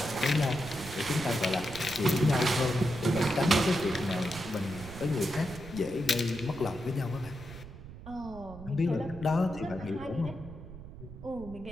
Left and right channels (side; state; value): right; noise; rumble, 14 dB below the sound